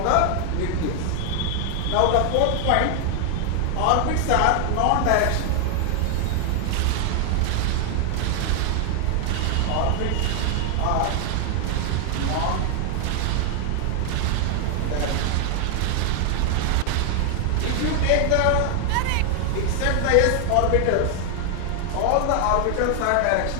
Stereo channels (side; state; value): both; different; correlation 0.00